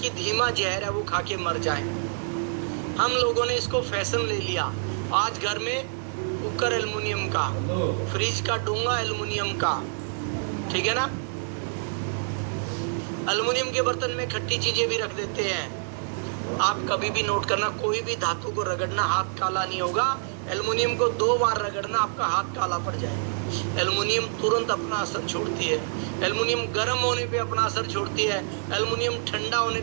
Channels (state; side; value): silent; left; 59 dB below the other